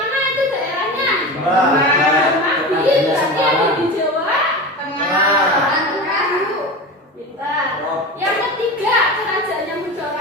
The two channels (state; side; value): normal; both; correlation 0.28